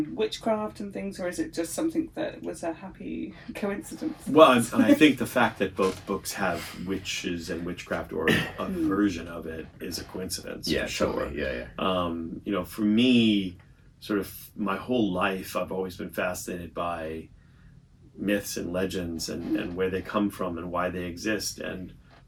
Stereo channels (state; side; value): identical; both; correlation 1.00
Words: witchcraft and things, or is it just something that was a happy coincidence? Well, I think the fact that both books have witches and witchcraft, or a version of it, is a coincidence. Yeah, sure. Totally. Yeah. For me, sort of my whole life, I've always been fascinated by myths and legends and where they come from and why they exist and